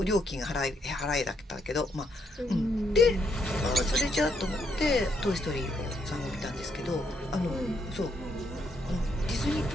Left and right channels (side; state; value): both; normal; correlation 0.75